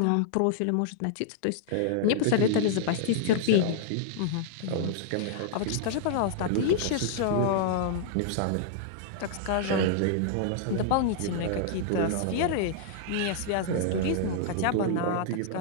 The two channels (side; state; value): both; different; correlation -0.01